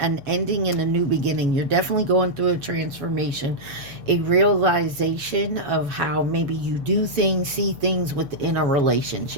ending and a new beginning. You're definitely going through a transformation, a realization of how maybe you do things, see things within a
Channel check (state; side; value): late; left; 7.1 ms